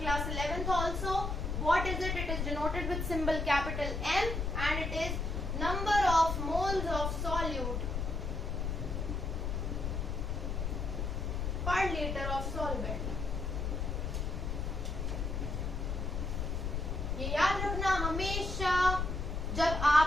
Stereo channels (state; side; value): noise; left; rumble, 2 dB below the sound